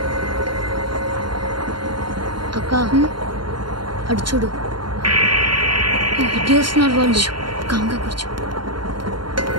అక్క అడు చూడు ఇటు వస్తున్నారు వాళ్ళు. కాంగా కూర్చో.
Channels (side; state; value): left; late; 0.72 ms